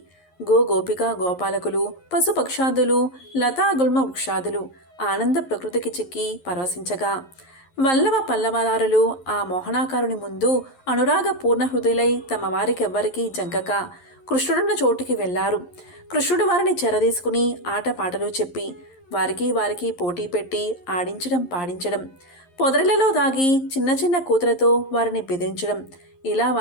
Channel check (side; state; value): right; late; 11 ms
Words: గోపిక గోపాలకులు, పశుపక్షాదులు, లతాగుల్మ వృక్షాదులు ఆనంద ప్రకృతికి చిక్కి పరవశించగా వల్లవ పల్లవదారులు ఆ మోహనాకారుని ముందు అనురాగ పూర్ణ హృదయులై తమ వారికెవ్వరికీ జంకక కృష్ణుడున్న చోటికి వెళ్లారు. కృష్ణుడు వారిని చెరదీసుకుని ఆటపాటలు చెప్పి వారికి పోటీ పెట్టి ఆడించడం పాడించడం, పొదరిలలో దాగి చిన్న చిన్న కూతులతో వారిని బెదిరించడం, ఇలా